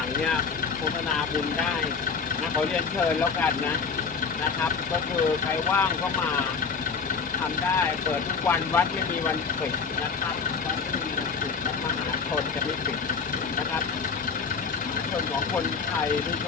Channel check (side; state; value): right; quieter; 5.4 dB